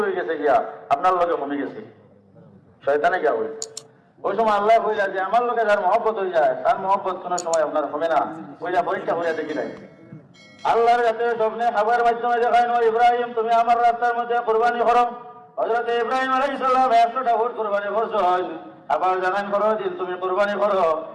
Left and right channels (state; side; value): identical; both; correlation 1.00